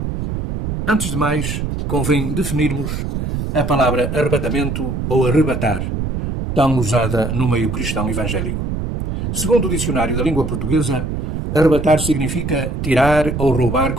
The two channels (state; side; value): noise; right; rumble, 3 dB below the sound